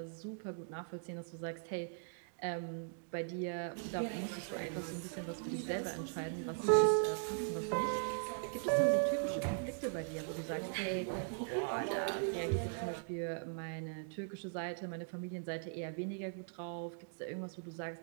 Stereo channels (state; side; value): silent; left; digital silence